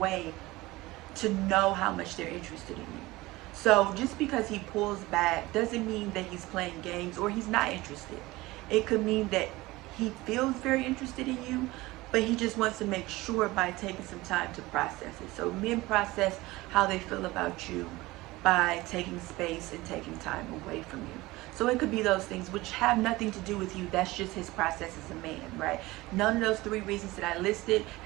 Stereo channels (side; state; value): left; quieter; 19.9 dB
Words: to know how much they're interested in you. So just because he pulls back doesn't mean that he's playing games or he's not interested. It could mean that he feels very interested in you, but he just wants to make sure by taking some time to process it. So men process how they feel about you by taking space and taking time away from you. So it could be those things which have nothing to do with you. That's just his process as a man, right? None of those three reasons that I listed